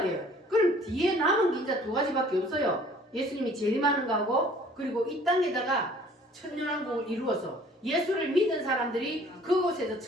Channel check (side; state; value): both; normal; correlation 0.54